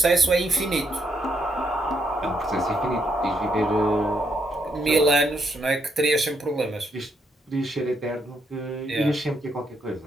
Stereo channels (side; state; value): both; normal; correlation 0.76